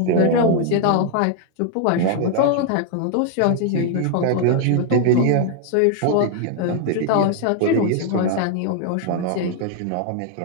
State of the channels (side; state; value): both; different; correlation 0.00